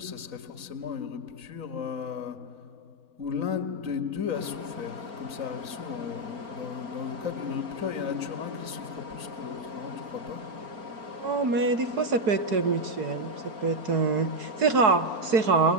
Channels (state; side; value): late; left; 4.7 ms